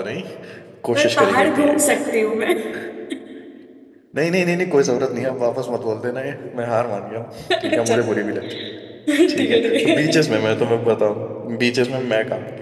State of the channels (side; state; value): both; identical; correlation 1.00